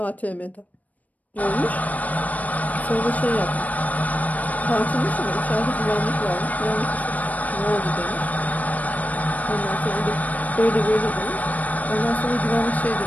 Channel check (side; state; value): right; late; 0.074 ms